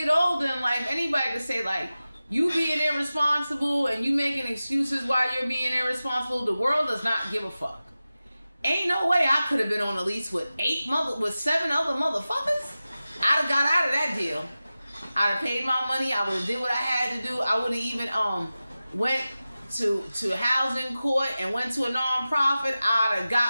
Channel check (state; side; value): inverted; both; correlation -0.95